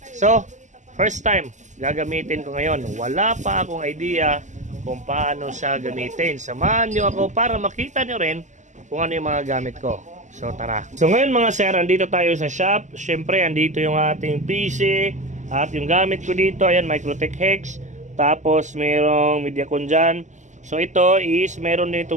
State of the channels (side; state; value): left; late; 0.35 ms